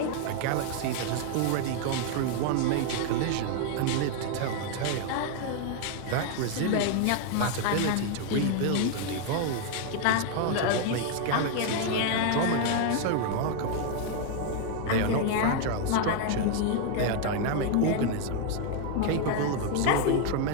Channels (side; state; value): both; different; correlation 0.00